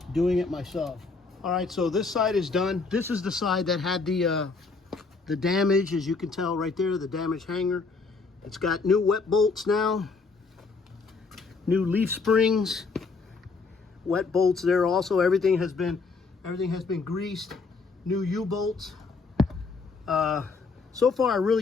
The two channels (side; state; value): right; quieter; 4.3 dB